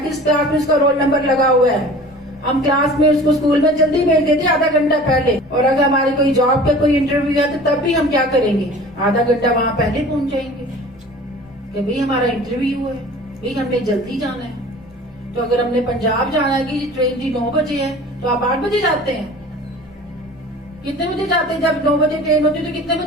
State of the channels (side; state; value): both; normal; correlation 0.43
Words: क्लास में उसका रोल नंबर लगा हुआ है। हम क्लास में उसको स्कूल में जल्दी भेज देते आधा घंटा पहले, और अगर हमारी कोई जॉब का कोई इंटरव्यू है तो तब भी हम क्या करेंगे, आधा घंटा वहां पहले पहुंच जाएंगे कि भाई हमारा इंटरव्यू है, भाई हमने जल्दी जाना है। तो अगर हमने पंजाब जाना है कि ट्रेन जी 9 बजे है तो आप 8 बजे जाते हैं। कितने बजे जाते हैं? जब 9 बजे ट्रेन होती है तो कितने